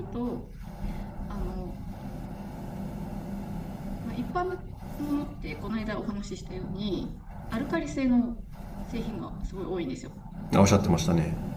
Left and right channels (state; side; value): identical; both; correlation 1.00